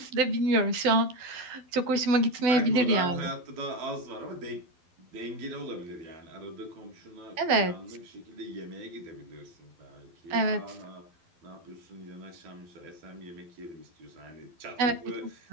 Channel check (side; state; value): left; late; 12 ms